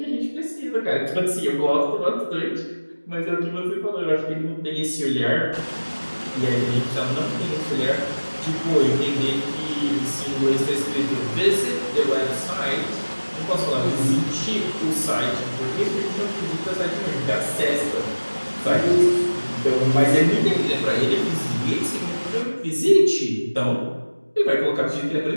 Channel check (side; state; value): both; inverted; correlation -1.00